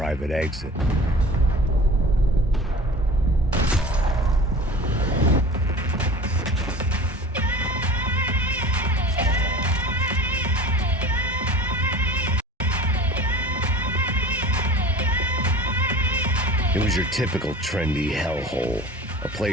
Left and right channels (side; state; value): both; normal; correlation 0.39